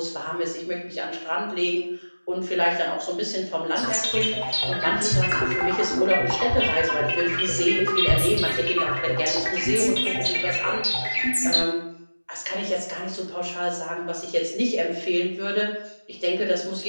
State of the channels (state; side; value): inverted; both; correlation -1.00